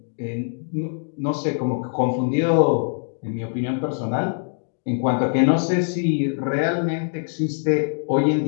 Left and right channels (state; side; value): silent; right; digital silence